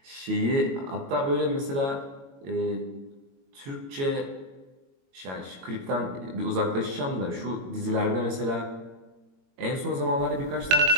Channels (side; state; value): left; late; 22 ms